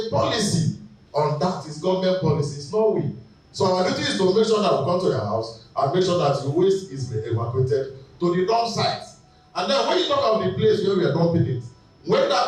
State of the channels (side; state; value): both; identical; correlation 1.00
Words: a policy on that. It's government policy. It's not we. So our duty is to make sure that we come to your house and make sure that the waste is evacuated to the dump site. And then when you talk of the place where we are dumping it, when